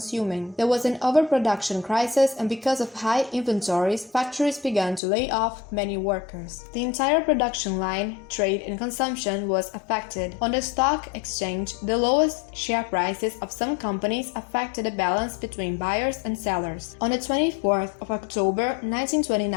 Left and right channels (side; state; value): right; drops out; at 5.0 s